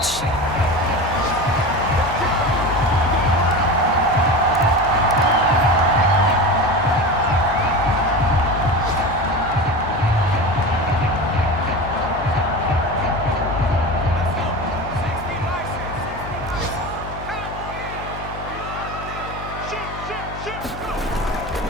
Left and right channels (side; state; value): left; noise; hum, 11 dB below the sound